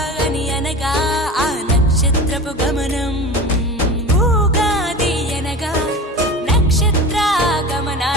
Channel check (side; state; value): both; normal; correlation 0.33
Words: అనగా ఆ నక్షత్రపు గమనం. ఊగాది అనగా నక్షత్ర